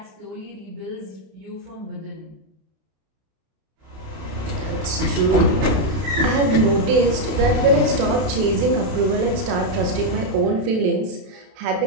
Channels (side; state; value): left; late; 32 ms